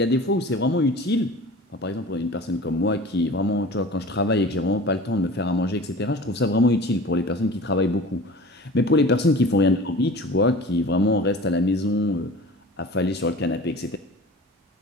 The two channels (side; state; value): both; normal; correlation 0.40